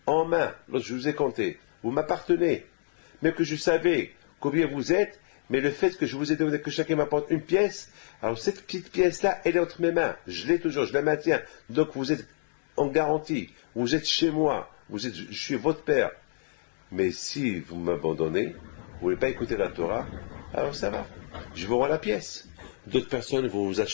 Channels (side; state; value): right; silent; digital silence